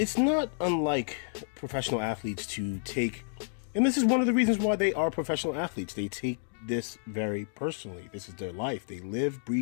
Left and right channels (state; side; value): silent; right; digital silence